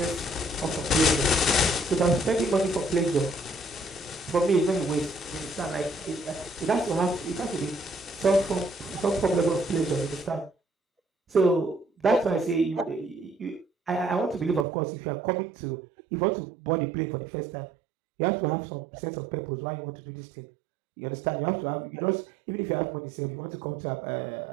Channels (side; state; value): left; drops out; at 14.7 s